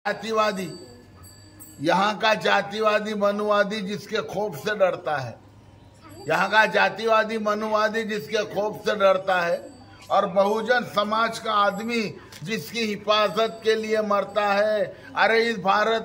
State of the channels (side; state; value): both; identical; correlation 1.00